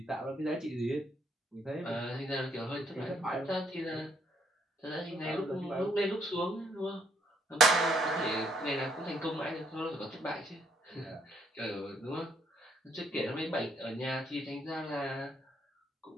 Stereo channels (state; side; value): normal; both; correlation 0.69